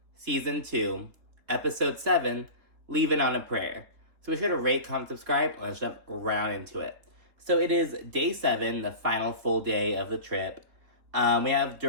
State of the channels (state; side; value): late; left; 3.5 ms